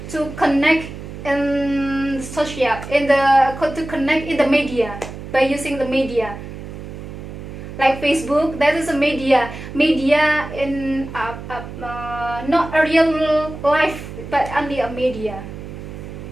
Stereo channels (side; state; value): right; noise; hum, 11 dB below the sound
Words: to connect in to connect in the media by using the media. Like Facebook, that is a media in not a real life, but only a media.